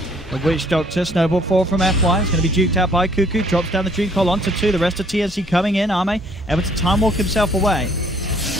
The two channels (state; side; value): normal; both; correlation 0.61